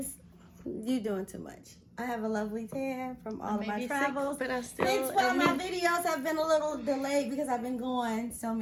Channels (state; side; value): identical; both; correlation 1.00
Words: You're doing too much. I have a lovely tan from all of my travels. Sick, but I still. Hence why my videos have been a little delayed because I've been going so